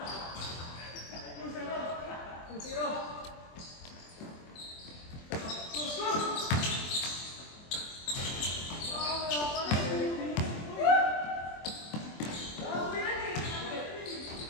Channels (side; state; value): right; late; 24 ms